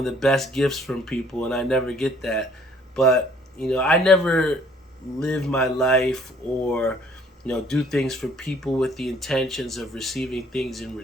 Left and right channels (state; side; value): normal; both; correlation 0.59